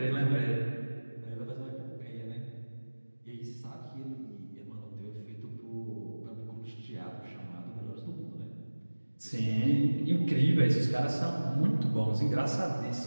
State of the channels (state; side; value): inverted; both; correlation -1.00